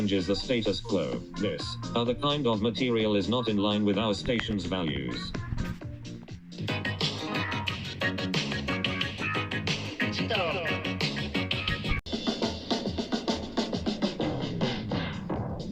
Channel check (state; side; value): identical; both; correlation 1.00